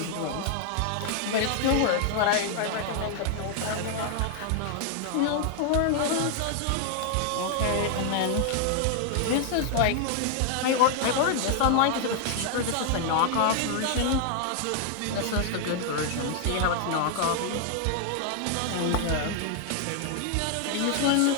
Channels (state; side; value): different; both; correlation 0.00